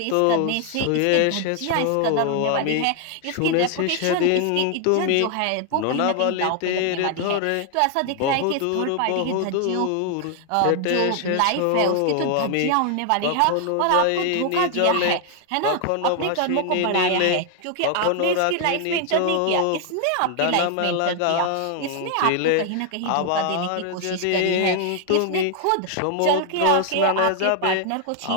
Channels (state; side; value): different; both; correlation 0.00